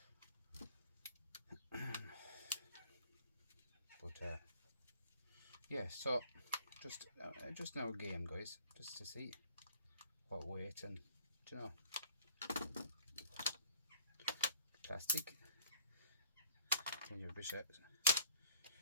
But yeah, so just now a game, guys, just to see what weight, and plastic. Then you push them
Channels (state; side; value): inverted; both; correlation -0.54